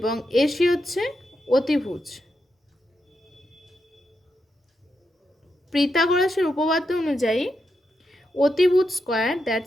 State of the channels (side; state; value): both; normal; correlation 0.85